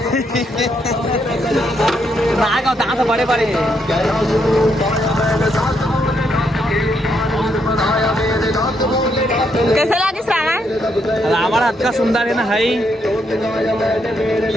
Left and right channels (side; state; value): both; normal; correlation 0.77